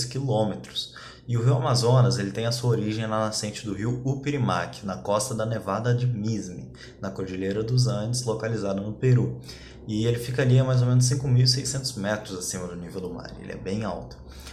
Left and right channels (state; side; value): identical; both; correlation 1.00